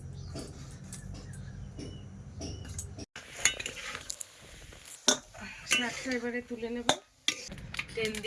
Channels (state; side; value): identical; both; correlation 1.00